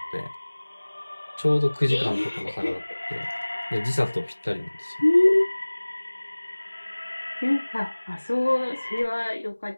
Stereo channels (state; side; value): inverted; both; correlation -1.00